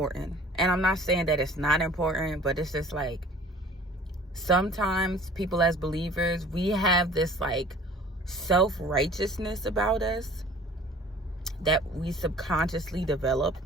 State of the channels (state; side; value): normal; both; correlation 0.48